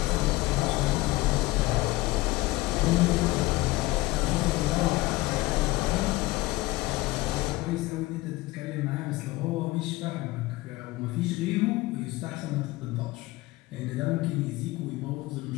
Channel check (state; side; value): quieter; right; 19.9 dB